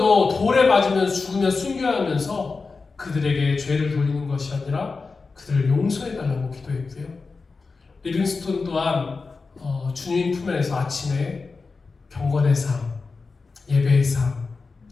돌에 맞으면 죽으면 순교하면서 그들에게 죄를 돌리는 것이 아니라 그들을 용서해달라고 기도했고요. 리빙스톤 또한 주님 품에서 아침에 경건의 삶, 예배의 삶,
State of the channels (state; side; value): quieter; right; 4.3 dB